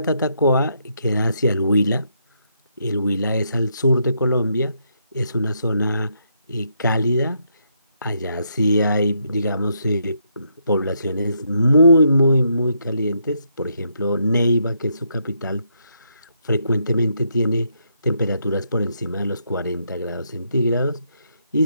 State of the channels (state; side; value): inverted; both; correlation -0.77